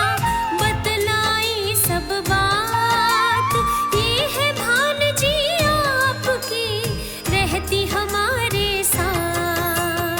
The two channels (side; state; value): both; identical; correlation 1.00